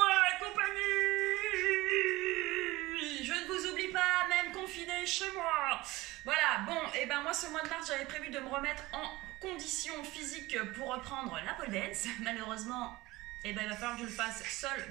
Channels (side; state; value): left; quieter; 19.7 dB